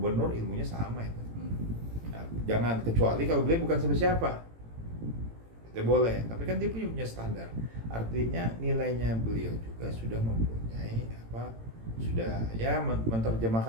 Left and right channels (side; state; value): left; late; 18 ms